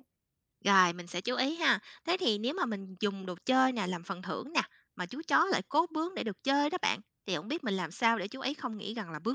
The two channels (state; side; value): identical; both; correlation 1.00